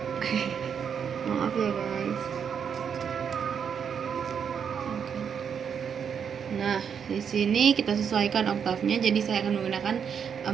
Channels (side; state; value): left; quieter; 7.3 dB